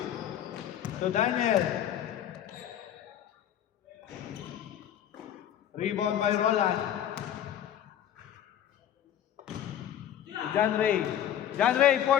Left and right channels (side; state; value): right; quieter; 10.6 dB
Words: To Daniel. Rebound by Roland. To John Ray. John Ray,